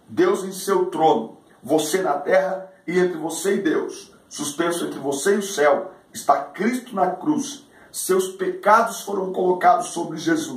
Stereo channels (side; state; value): both; identical; correlation 1.00